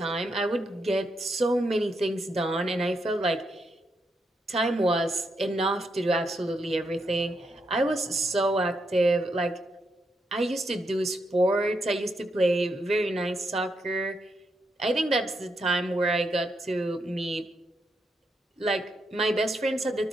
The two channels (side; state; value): both; normal; correlation 0.81